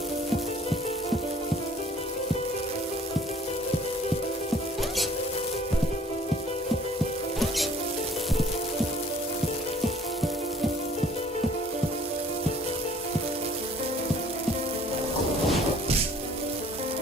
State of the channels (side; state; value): both; normal; correlation 0.56